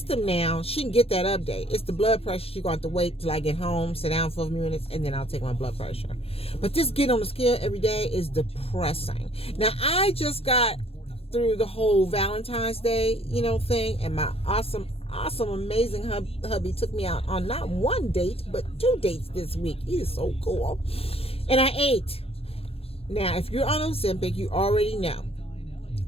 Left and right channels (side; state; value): right; late; 0.28 ms